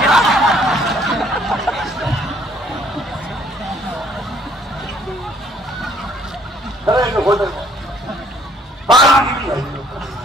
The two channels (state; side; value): normal; both; correlation 0.62